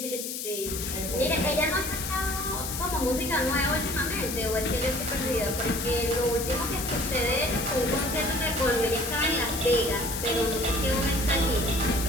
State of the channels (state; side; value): noise; left; hiss, 5 dB below the sound